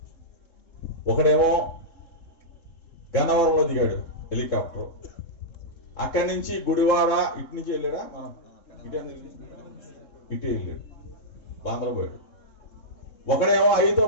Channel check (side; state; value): right; late; 3.7 ms